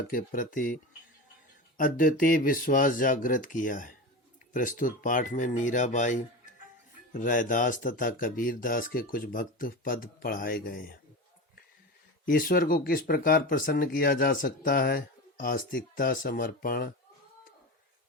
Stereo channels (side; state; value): both; normal; correlation 0.26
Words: के प्रति अद्वितीय विश्वास जागृत किया है। प्रस्तुत पाठ में मीराबाई, रैदास तथा कबीर दास के कुछ भक्त पद पढ़ाए गए हैं। ईश्वर को किस प्रकार प्रसन्न किया जा सकता है? आस्तिकता, समर्पण,